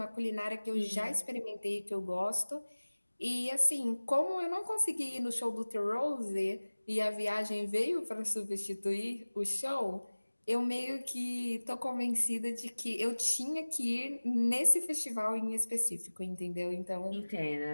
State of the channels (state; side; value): inverted; both; correlation -1.00